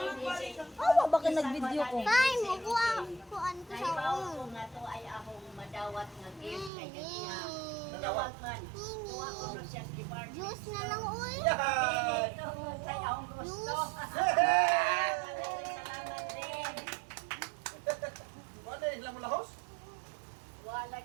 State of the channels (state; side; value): drops out; left; at 6.7 s